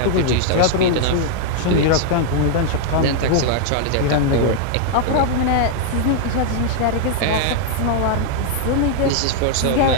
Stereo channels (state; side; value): different; both; correlation 0.00